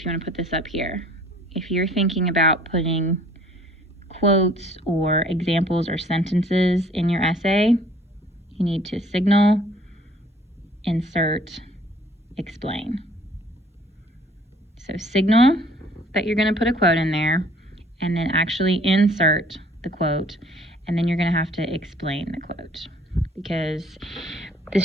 you want to put this up here, if you're thinking about putting quotes or examples or sentences in your essay, you need to signal, insert, explain. So signal that you're going to put a quote in there, and then actually insert the quote, and then you're going to have to explain the quote. Because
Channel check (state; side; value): normal; both; correlation 0.56